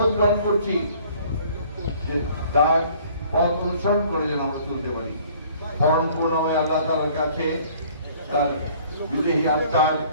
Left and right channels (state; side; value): inverted; both; correlation -0.55